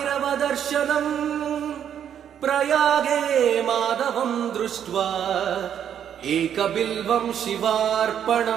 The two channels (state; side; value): quieter; left; 9.2 dB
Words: प्रयागे माधवं दृष्ट्वा एकबिल्वं